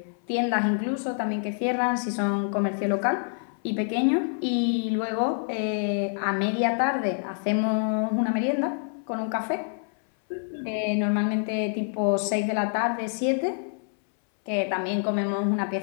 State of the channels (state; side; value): silent; right; 60 dB below the other